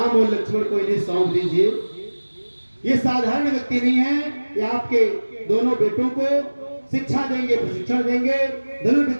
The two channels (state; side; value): inverted; both; correlation -1.00